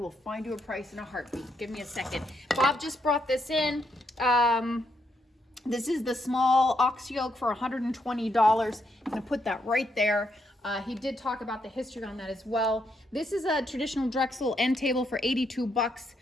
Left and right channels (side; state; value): both; normal; correlation 0.78